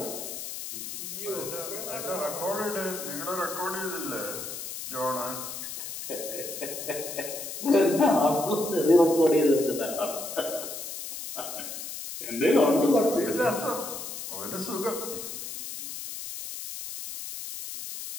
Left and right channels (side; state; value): left; noise; hiss, 8 dB below the sound